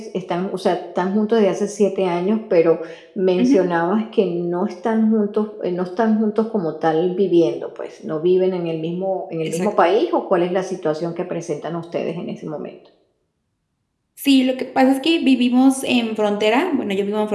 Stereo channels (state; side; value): identical; both; correlation 1.00